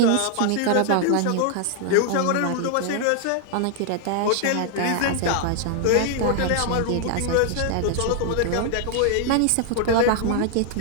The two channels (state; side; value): different; both; correlation 0.00